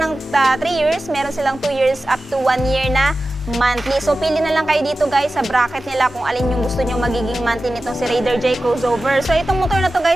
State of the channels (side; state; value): both; normal; correlation 0.94